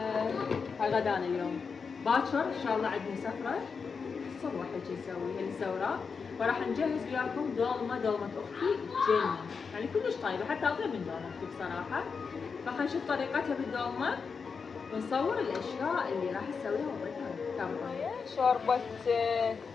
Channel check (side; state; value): right; quieter; 5.5 dB